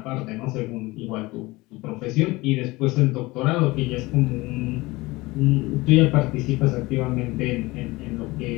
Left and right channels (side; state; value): right; quieter; 21.5 dB